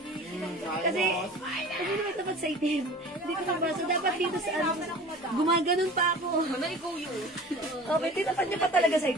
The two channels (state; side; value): normal; both; correlation 0.41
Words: Kasi naman tapat sa itim. Hindi ko mabasa. Dapat dito sa gumaganon pa ako. Okay, tinapat niya pa talaga sa